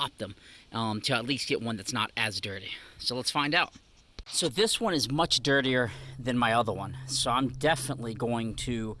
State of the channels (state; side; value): identical; both; correlation 1.00